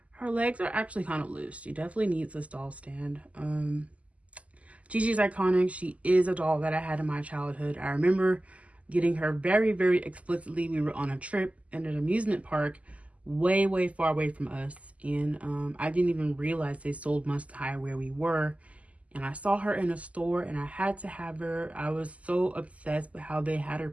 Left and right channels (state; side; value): late; left; 0.068 ms